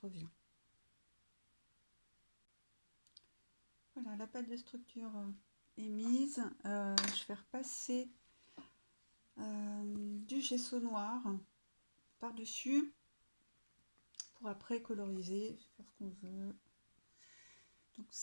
Voilà, la pâte de structure est mise. Je vais repasser du gesso noir par-dessus pour après coloriser, faire ce qu'on veut. Donc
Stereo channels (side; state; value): both; inverted; correlation -1.00